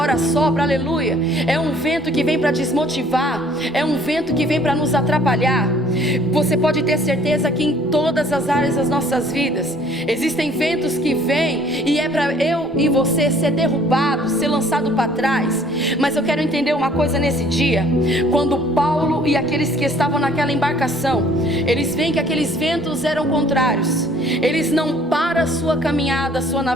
sopra, aleluia, é um vento que vem para desmotivar, é um vento que vem para nos atrapalhar. Você pode ter certeza que em todas as áreas das nossas vidas existem ventos que vêm, e é para eu e você ser derrubado, ser lançado para trás. Mas eu quero entender uma coisa nesse dia. Quando Paulo e aqueles que estavam naquela embarcação, eles veem que aqueles ventos eram contrários, eles não param a sua caminhada, a sua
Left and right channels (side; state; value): both; normal; correlation 0.57